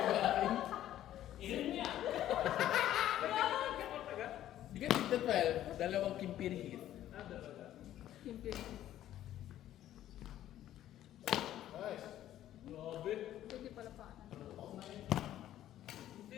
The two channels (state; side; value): quieter; right; 12.5 dB